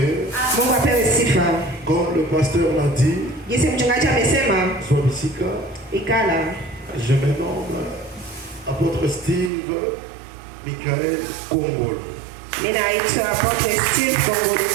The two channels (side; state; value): left; drops out; at 9.5 s